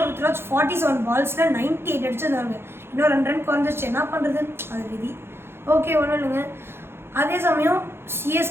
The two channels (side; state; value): left; late; 0.11 ms